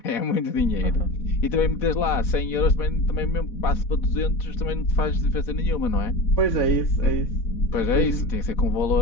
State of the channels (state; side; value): late; right; 4.1 ms